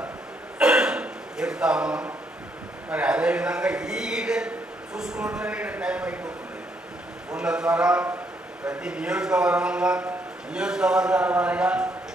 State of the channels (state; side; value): normal; both; correlation 0.73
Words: చెప్తా ఉన్నాం. మరి అదేవిధంగా ఈ చూసుకున్నట్లనే టైం అయిపోతుంది. ఫోన్ల ద్వారా ప్రతి నియోజకవర్గాల వారిగా